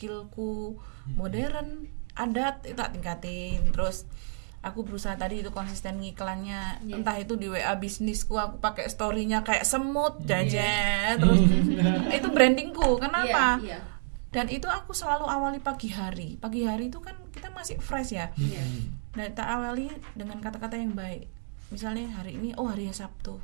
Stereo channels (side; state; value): left; silent; digital silence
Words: modern, adat itu tak tingkatin. Terus aku berusaha tadi itu konsisten ngiklannya, entah itu di WA bisnisku aku pakai story-nya kayak semut jajan. Terus itu brandingku. Kenapa? Iya. Dan itu aku selalu awali pagi hari. Pagi hari itu kan kita masih fresh ya. Dan tak awali dengan kata-kata yang baik. Misalnya hari ini, hari Sabtu.